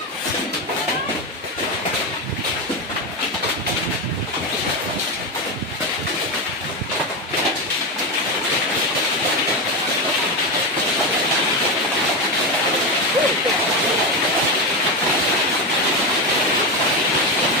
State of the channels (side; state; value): both; normal; correlation 0.14